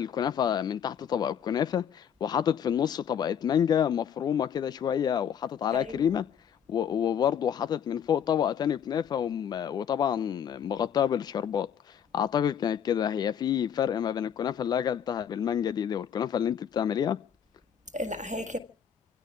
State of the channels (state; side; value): quieter; right; 8.4 dB